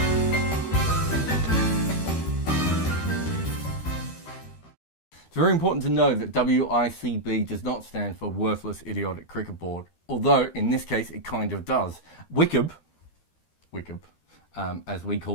It's very important to know that WICB does not stand for Worthless Idiotic Cricket Board, although in this case it kind of does. WICB, as we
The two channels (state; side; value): late; right; 13 ms